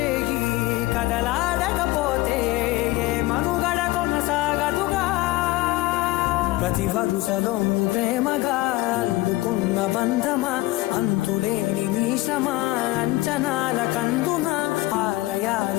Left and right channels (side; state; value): right; quieter; 19.1 dB